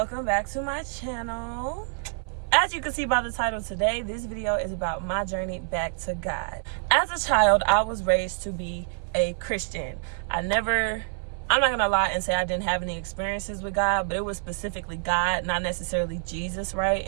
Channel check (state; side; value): silent; left; 57 dB below the other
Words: back to my channel. As you can see by the title today, this video is about my journey back to God. As a child, I was raised to be a Christian. I'm not gonna lie and say I didn't have any experiences with God, but it was specifically God, not necessarily Jesus, right?